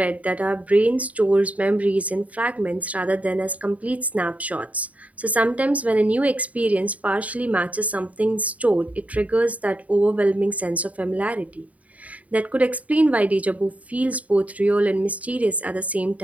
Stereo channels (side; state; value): left; late; 0.070 ms